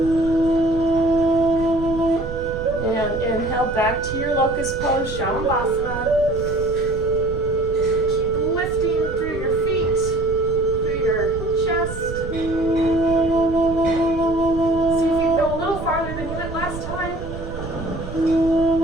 Back to your locust pose, Shavasana. Keep lifting through your feet, through your chest. See if you can go a little farther than you went last time.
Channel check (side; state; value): right; noise; rumble, 9 dB below the sound